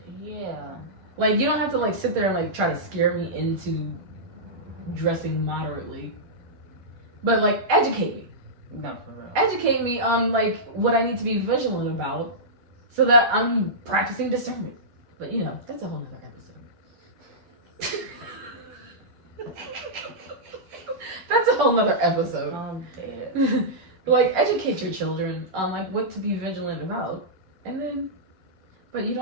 Yeah. Like, you don't have to like sit there and like try to scare me into dressing moderately. But like, educate me. No, for real. Educate me on like what I need to be vigilant about so that I'm practicing discernment. But you know, that's a whole nother episode. That's a whole nother episode. I'm dead. Like, educate your children on like what to be vigilant about. And then, but you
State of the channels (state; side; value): late; left; 11 ms